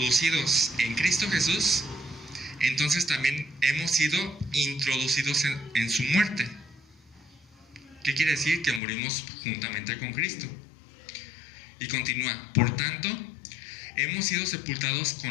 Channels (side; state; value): right; drops out; at 8.8 s